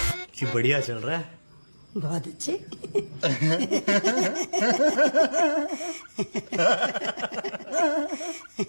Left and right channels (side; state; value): both; inverted; correlation -1.00